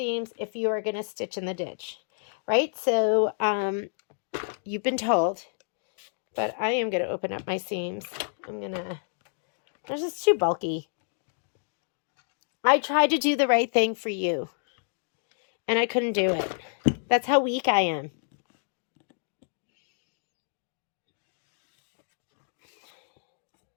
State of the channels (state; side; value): silent; right; digital silence